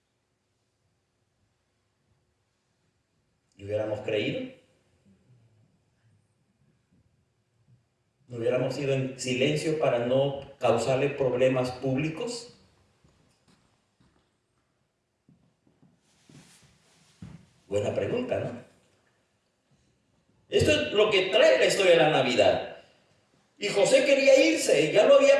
¿Y hubiéramos creído? ¿No hubiéramos ido en silencio para no causarle problemas públicos? Buena pregunta, ¿no? Esto es lo que trae la historia de la Navidad. Y José quería irse, ya lo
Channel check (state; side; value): identical; both; correlation 1.00